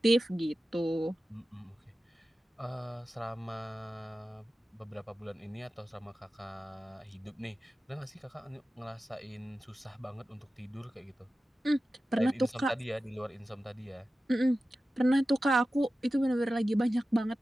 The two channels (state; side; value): normal; both; correlation 0.94